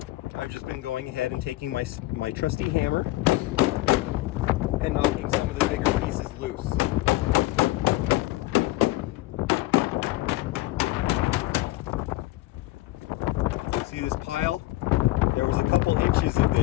I've just been going ahead and taking my trusty hammer and knocking some of the bigger pieces loose. See this pile? There was a couple inches of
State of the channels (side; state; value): right; quieter; 18.2 dB